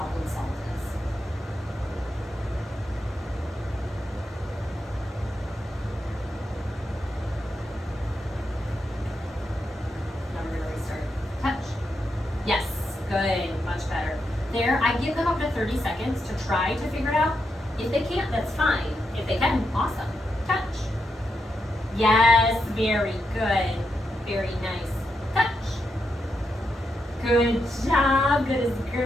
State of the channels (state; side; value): normal; both; correlation 0.84